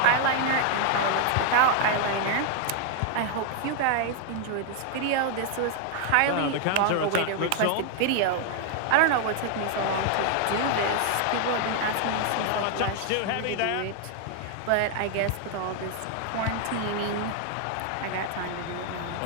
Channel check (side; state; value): both; different; correlation 0.00